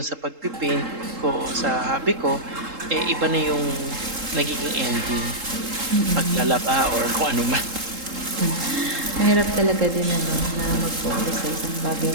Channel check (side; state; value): left; late; 3.7 ms